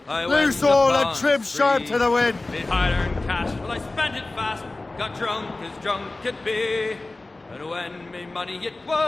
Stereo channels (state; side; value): quieter; right; 3.1 dB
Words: I Loose went all upon and trim the sharp spree. to the wind! Made hard-earned cash, well I spent it fast, got drunk as drunk could be. And when me money it